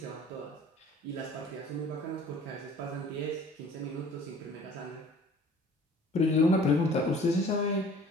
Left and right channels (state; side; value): normal; both; correlation 0.49